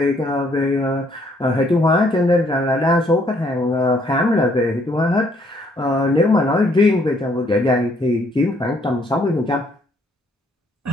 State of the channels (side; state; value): both; normal; correlation 0.67